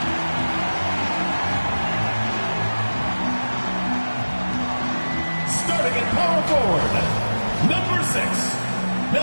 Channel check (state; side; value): inverted; both; correlation -1.00